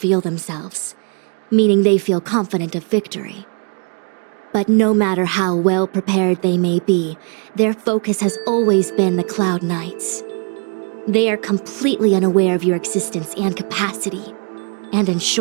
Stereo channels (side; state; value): left; quieter; 39.0 dB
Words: themselves, meaning they feel confident of victory. But no matter how well prepared they may be, their focus has always been the Cloud Knights. They are completely unaware of your existence and capacity, and in